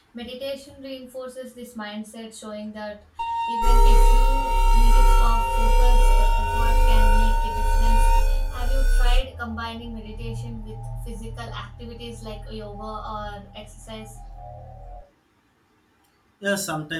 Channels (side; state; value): both; identical; correlation 1.00